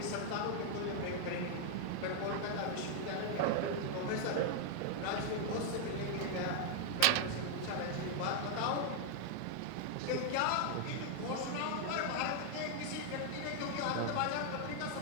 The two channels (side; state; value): both; different; correlation 0.00